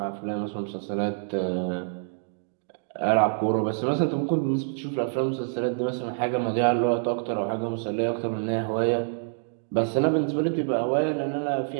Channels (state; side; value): silent; left; digital silence